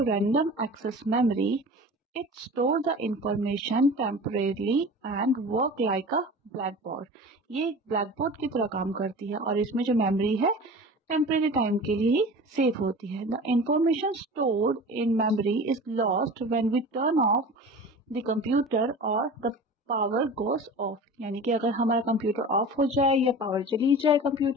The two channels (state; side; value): normal; both; correlation 0.36